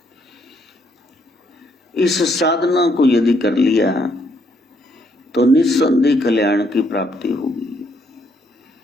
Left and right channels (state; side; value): normal; both; correlation 0.72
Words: इस साधना को यदि कर लिया तो निस्संदेह कल्याण की प्राप्ति होगी।